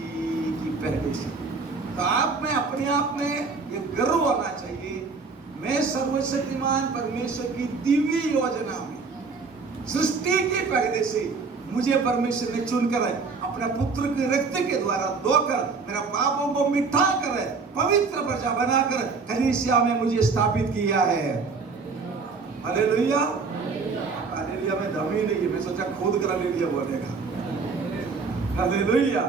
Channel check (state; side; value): quieter; left; 4.6 dB